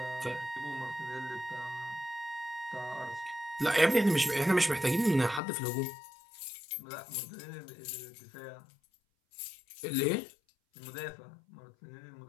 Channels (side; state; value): right; drops out; at 5.4 s